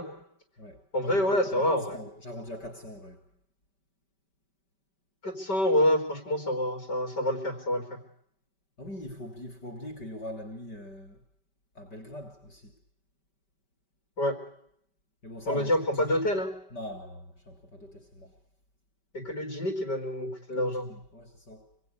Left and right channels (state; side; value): late; right; 5.2 ms